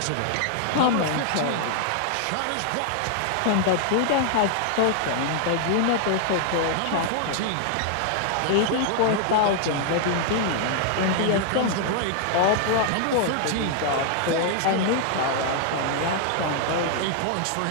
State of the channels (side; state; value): both; different; correlation 0.00